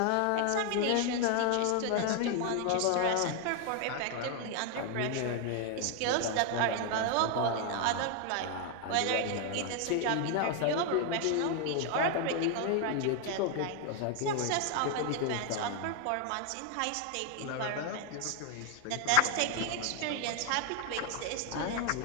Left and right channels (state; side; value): different; both; correlation 0.00